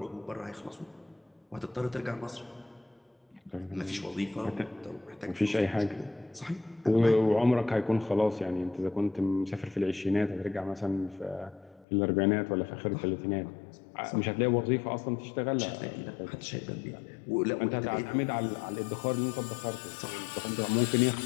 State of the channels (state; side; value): drops out; right; at 11.9 s